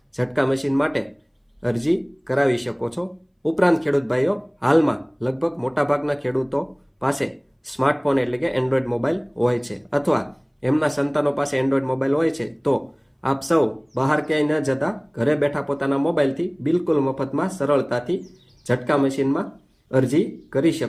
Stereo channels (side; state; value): both; identical; correlation 1.00